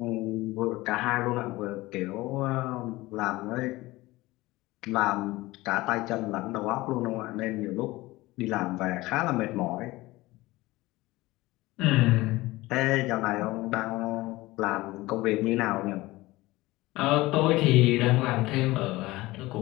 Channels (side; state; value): right; quieter; 19.5 dB